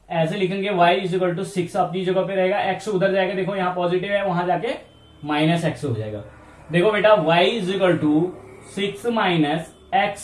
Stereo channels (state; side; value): identical; both; correlation 1.00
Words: ऐसे लिखेंगे, y इज इक्वल टू 6 अपनी जगह पे रहेगा, x उधर जाएगा, देखो यहाँ पॉजिटिव है, वहां जाके माइनस x हो जाएगा। देखो बेटा y is equal to 6 minus